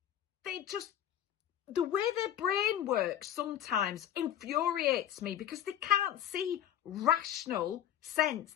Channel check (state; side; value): quieter; right; 10.8 dB